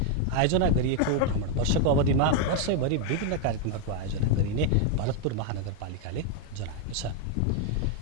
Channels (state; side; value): different; both; correlation 0.00